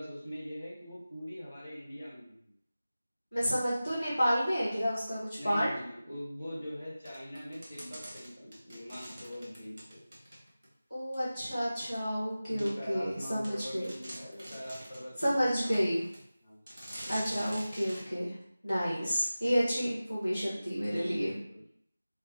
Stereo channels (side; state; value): both; inverted; correlation -0.96